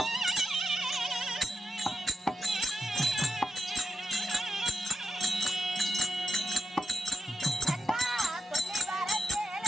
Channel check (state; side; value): normal; both; correlation 0.86